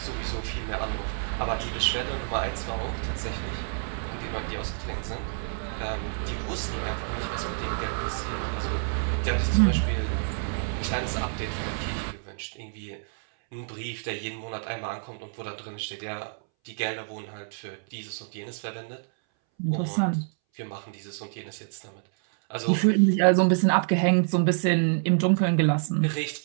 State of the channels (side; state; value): left; silent; 59 dB below the other